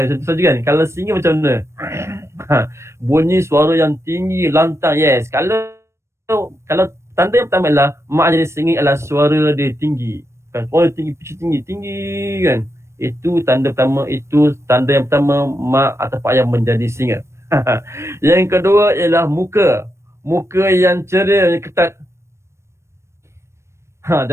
Contoh kan. Kalau singa macam mana? Bunyi suara yang tinggi, lantang. Yes. Kalau tanda yang pertama ialah mak jadi singa ialah suara dia tinggi. Kan? Suara tinggi, pitch tinggi kan. Itu tanda yang pertama mak atau ayah menjadi singa. Yang kedua ialah muka. Muka yang ceria, yang ketat.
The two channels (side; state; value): left; late; 0.13 ms